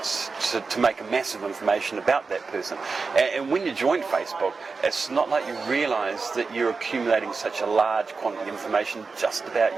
make a massive information about that person. And when you join Facebook, it's not like you realise that you're accumulating such a large quantity of information just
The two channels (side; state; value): left; quieter; 4.5 dB